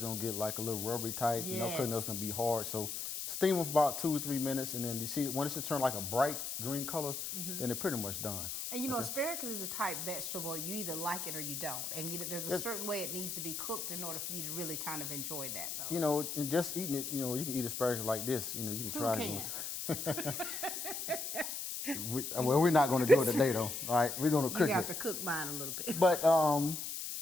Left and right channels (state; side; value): noise; left; hiss, 4 dB below the sound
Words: going to get like a little rubbery type. You know, cooking it's going to be hard. So steam them for about 2 or 3 minutes, and then you see when it's turn like a bright green color, then they're pretty much done. And you know, asparagus is the type vegetable you either like it or you don't, and there's a certain way it needs to be cooked in order for you to really kind of enjoy that, though. You know, and just eating it, you know, you can eat asparagus like this. You know, you can try it. Well, we're not going to do it today, though. All right, we're going to cook it. You have to cook mine a little bit. But